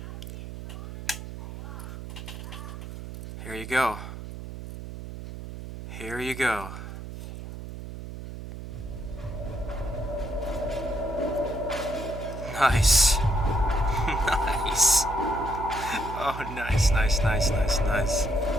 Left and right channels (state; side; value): noise; right; hum, 10 dB below the sound